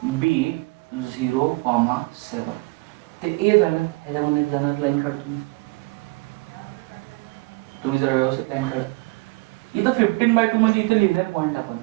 बी 0,7 ते ए झालं. ह्याच्यामध्ये जाणार लाईन काढतो तुम्ही जरा व्यवस्थित लाईन काढा. इथं 15/2 मध्ये इथं लिहिलंय पॉइंट आपण.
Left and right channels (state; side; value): quieter; left; 26.0 dB